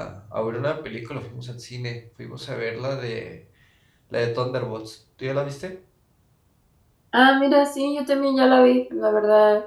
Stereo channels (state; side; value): identical; both; correlation 1.00